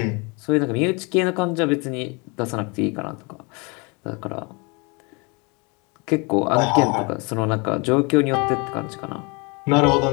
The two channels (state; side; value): quieter; right; 30.0 dB